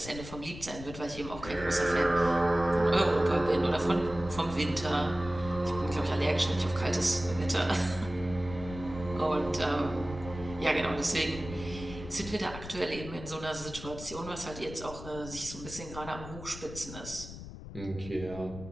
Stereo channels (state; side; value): noise; left; rumble, 12 dB below the sound